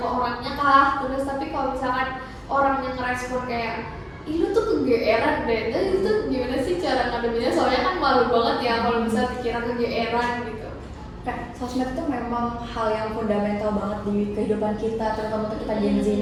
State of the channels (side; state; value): both; identical; correlation 1.00